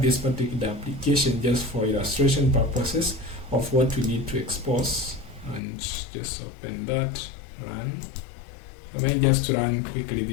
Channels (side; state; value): right; drops out; at 5.6 s